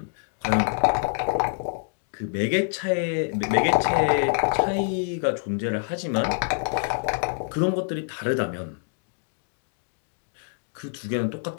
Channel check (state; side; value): silent; right; digital silence